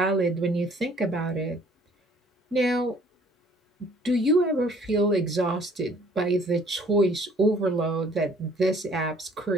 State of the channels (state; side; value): normal; both; correlation 0.57